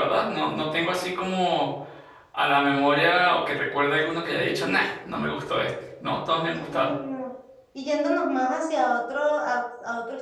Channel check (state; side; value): identical; both; correlation 1.00